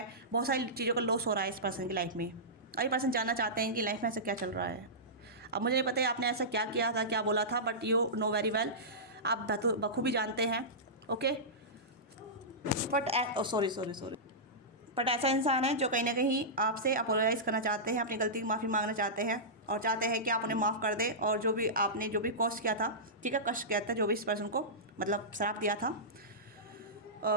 बहुत सारी चीज़ों का लॉस हो रहा है इस पर्सन की लाइफ में, और ये पर्सन जानना चाहते हैं कि लाइफ में ऐसा क्या चल रहा है। अब मुझे नहीं पता है आपने ऐसा क्या किया था, क्या बोला था, but you know very well, आप बखूबी जानते हैं, ओके। बट सॉरी बट ऐसा इंसान है जो कहीं ना कहीं आपसे अपोलोजाइज़ करना चाहते हैं, अपनी गलती की माफ़ी मांगना चाहते हैं, और चाहते हैं कि आप उन्हें माफ़ कर दें, और जो भी आपने जो भी कॉस्ट किया था, ठीक है, कष्ट किया था, जो भी इस पर्सन को मतलब श्राप दिया था,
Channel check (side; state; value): both; normal; correlation -0.16